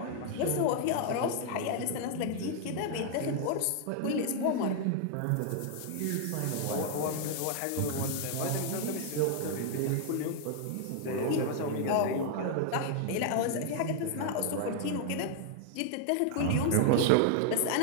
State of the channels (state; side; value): different; both; correlation 0.00